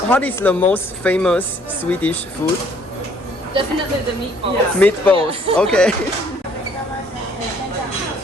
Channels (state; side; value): normal; both; correlation 0.61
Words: what is the most famous Swedish food? Definitely the meatballs. Meatballs. Okay.